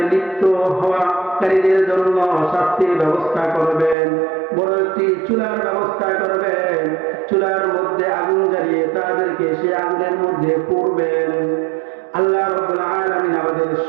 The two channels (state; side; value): drops out; left; at 4.0 s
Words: লিপ্ত হওয়াকারীদের জন্য শাস্তির ব্যবস্থা করবেন। বড় একটি চুলার ব্যবস্থা করবেন, চুলার মধ্যে আগুন জ্বালিয়ে তাদেরকে সে আগুনের মধ্যে পুড়বেন। আল্লাহ রাব্বুল আলামিন আমাদের